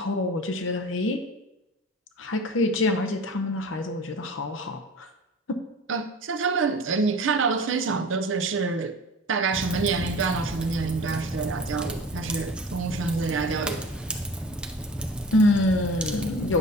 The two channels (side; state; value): both; normal; correlation 0.38